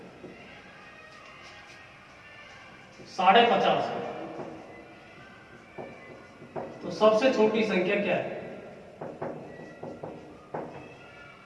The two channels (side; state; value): both; identical; correlation 1.00